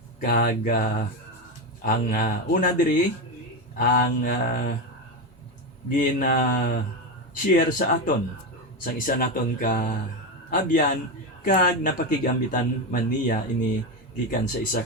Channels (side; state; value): both; normal; correlation 0.14